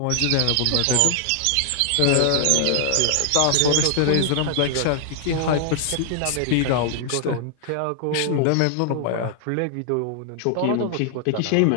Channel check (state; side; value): different; both; correlation 0.00